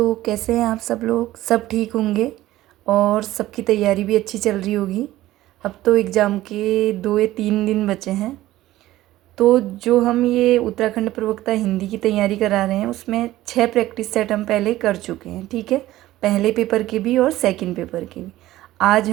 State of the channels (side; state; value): left; quieter; 15.6 dB